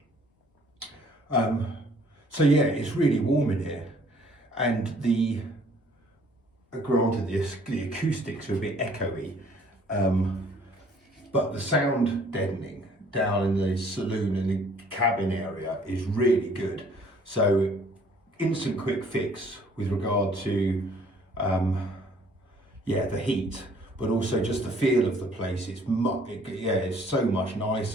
So yeah, it's really warm in here, and granted the acoustics are a bit echoey, but the sound deadening down in the saloon and the cabin area is really good. So instant quick fix with regard to the heat, but also just the feel of the place. It's so much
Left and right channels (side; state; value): both; normal; correlation 0.58